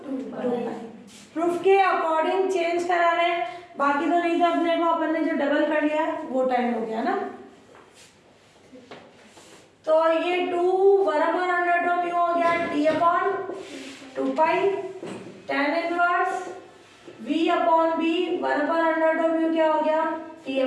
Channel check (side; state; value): both; identical; correlation 1.00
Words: 2 पाई। प्रूफ के अकॉर्डिंग चेंज करा रहे हैं, बाकी तो नहीं, तो अपने को अपन ने जो डबल कर लिया वो टाइम हो गया ना। तो ये 1 अपॉन अंडर ऑफ म्यू हो गया T upon 2 pi, tan inverse v upon b 1 upon under of mu क्या हो गया T